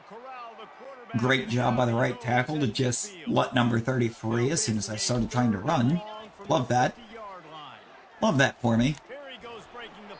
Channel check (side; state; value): both; identical; correlation 1.00